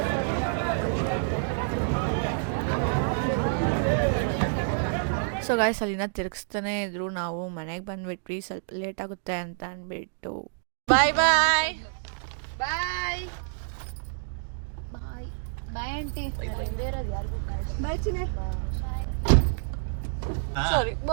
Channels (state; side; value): silent; left; digital silence